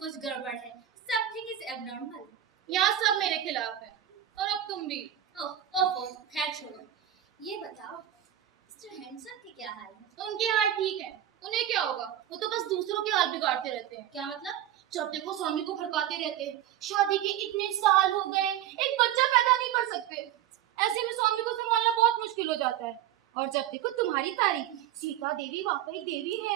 गड़बड़ है। Something is abnormal. यहाँ सब मेरे खिलाफ है और अब तुम भी। ओहो, खैर छोड़ो। ये बताओ, मिस्टर हैंडसम के क्या हाल है? उनके हाल ठीक है, उन्हें क्या होगा? वो तो बस दूसरों के हाल बिगाड़ते रहते हैं। क्या मतलब? जब देखो स्वामी को भड़काते रहते हैं। शादी के इतने साल हो गए, एक बच्चा पैदा नहीं कर सकते। ऐसे में स्वामी को संभालना बहुत मुश्किल हो जाता है। और जब देखो तुम्हारी तारीफ, सीता देवी वाकई देवी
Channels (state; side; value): quieter; left; 11.4 dB